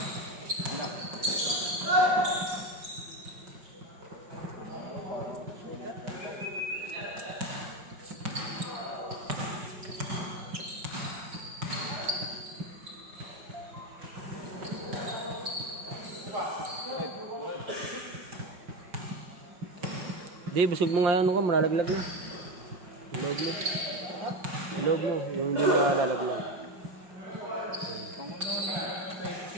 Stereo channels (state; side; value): late; left; 5.7 ms